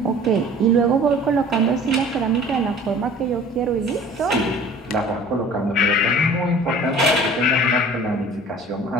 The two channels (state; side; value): normal; both; correlation 0.47